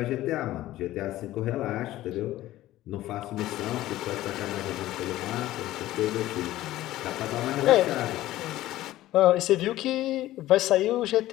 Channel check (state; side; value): quieter; right; 15.4 dB